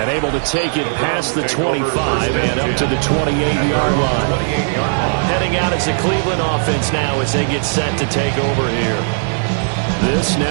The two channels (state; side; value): silent; left; 68 dB below the other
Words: able to take it past the 25 and up to the 28-yard line. Heading out as the Cleveland offense now as they get set to take over here. This